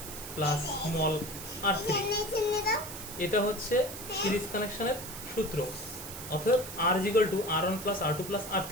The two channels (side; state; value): right; noise; hiss, 10 dB below the sound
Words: plus small R3। এটা হচ্ছে সিরিজ কানেকশনের সূত্র। অতএব R is equal to R1 plus R2 plus